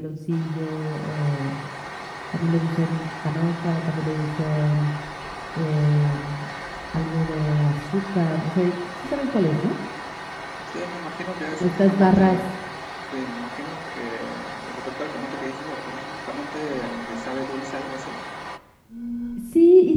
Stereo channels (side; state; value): both; identical; correlation 1.00